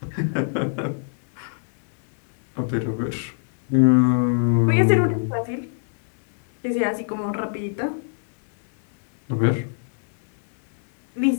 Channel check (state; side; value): silent; right; 63 dB below the other